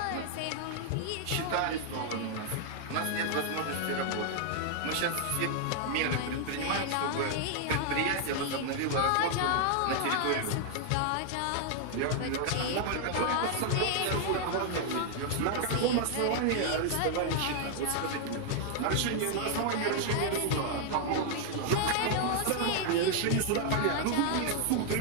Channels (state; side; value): different; both; correlation 0.00